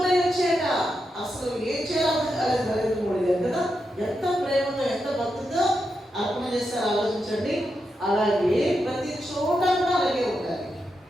వచ్చేట అసలు ఏం చేయాలి నరేంద్ర మోడీ గారు కదా. ఎంత ప్రేమతో ఎంత భక్తితో అర్పణ చేస్తారో ఆలోచించండి. అలాగే ప్రతి చోట కూడా అలాగే ఉండాలి.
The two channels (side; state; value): both; normal; correlation 0.86